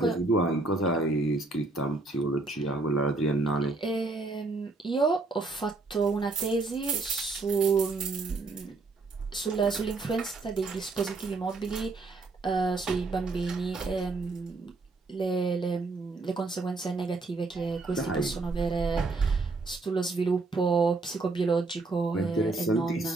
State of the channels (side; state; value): left; quieter; 3.5 dB